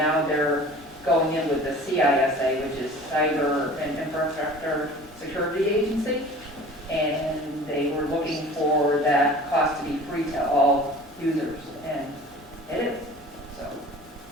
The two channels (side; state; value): both; normal; correlation 0.43